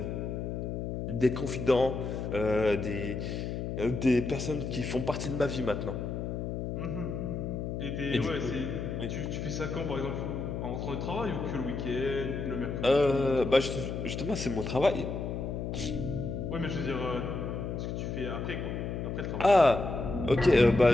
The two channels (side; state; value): left; noise; hum, 4 dB below the sound